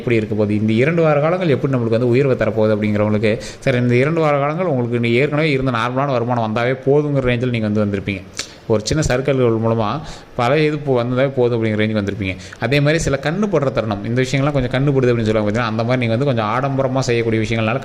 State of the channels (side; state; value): both; identical; correlation 1.00